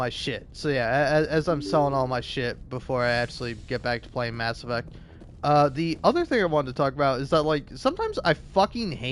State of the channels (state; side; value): identical; both; correlation 1.00